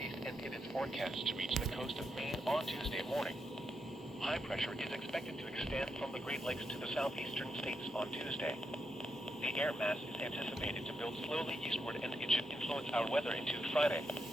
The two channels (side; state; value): both; normal; correlation 0.83